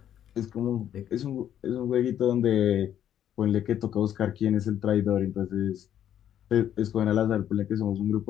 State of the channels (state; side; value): quieter; right; 10.4 dB